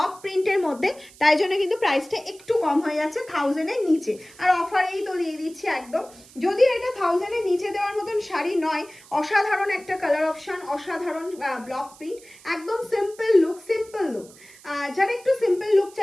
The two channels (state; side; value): noise; right; hiss, 23 dB below the sound